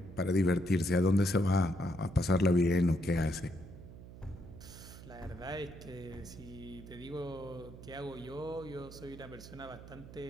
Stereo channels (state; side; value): noise; right; hum, 15 dB below the sound